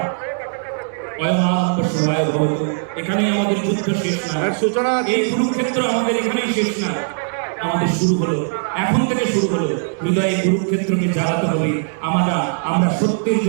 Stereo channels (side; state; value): left; silent; digital silence